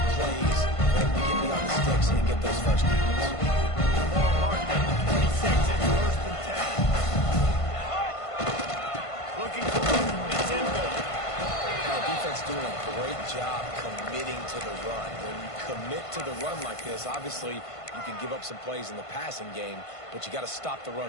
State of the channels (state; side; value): late; right; 1.5 ms